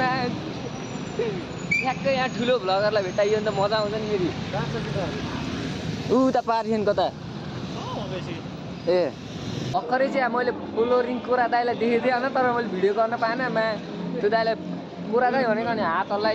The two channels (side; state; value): both; identical; correlation 1.00